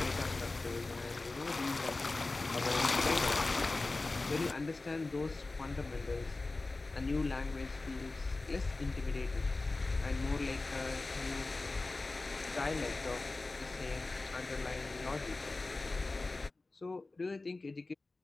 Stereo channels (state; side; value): quieter; right; 3.3 dB